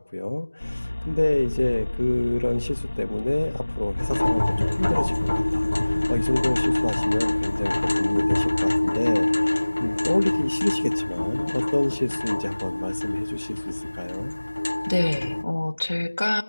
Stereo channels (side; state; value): both; inverted; correlation -1.00